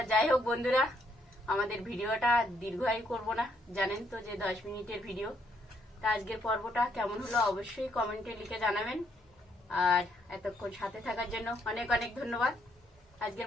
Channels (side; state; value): both; normal; correlation 0.71